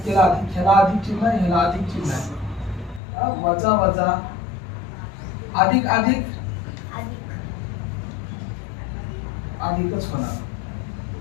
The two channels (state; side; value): drops out; right; at 3.0 s